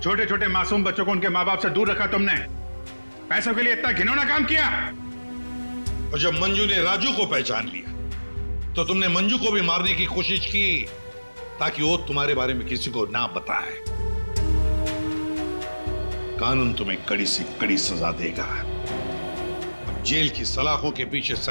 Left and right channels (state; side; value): inverted; both; correlation -1.00